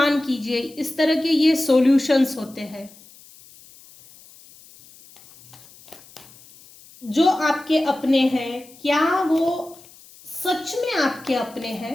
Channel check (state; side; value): noise; left; hiss, 23 dB below the sound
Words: कीजिए, इस तरह के ये सॉल्यूशंस होते हैं। जो आपके अपने हैं क्या वो सच में आपके अपने हैं?